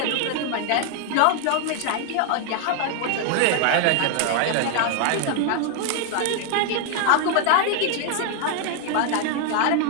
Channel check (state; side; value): different; both; correlation 0.00